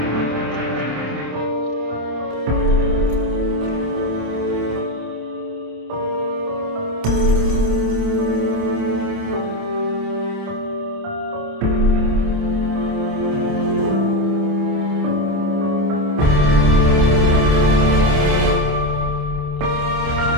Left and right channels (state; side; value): late; left; 27 ms